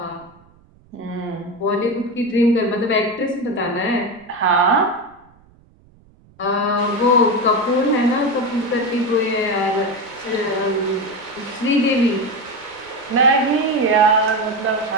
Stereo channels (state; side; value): noise; right; rumble, 29 dB below the sound